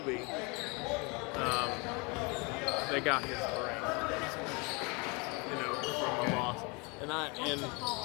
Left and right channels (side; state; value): right; quieter; 29.8 dB